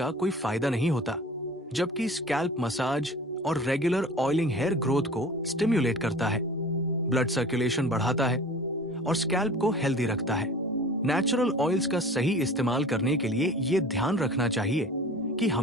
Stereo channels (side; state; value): both; normal; correlation 0.41